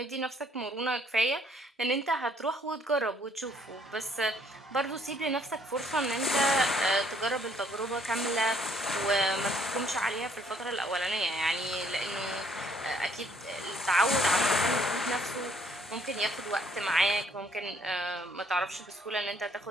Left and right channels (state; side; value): normal; both; correlation 0.65